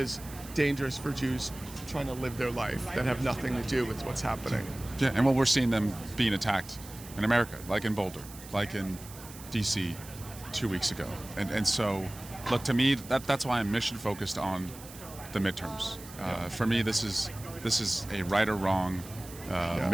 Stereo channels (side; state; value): right; noise; hiss, 16 dB below the sound